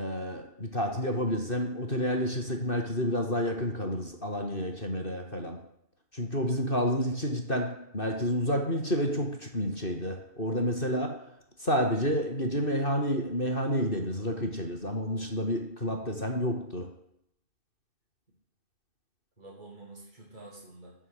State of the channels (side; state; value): right; late; 2.6 ms